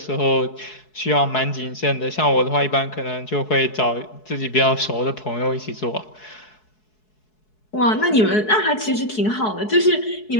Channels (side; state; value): right; late; 4.7 ms